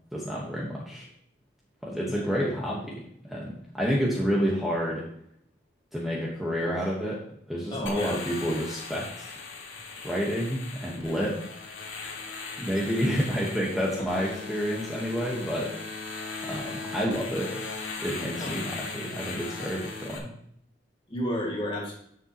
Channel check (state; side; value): normal; both; correlation 0.70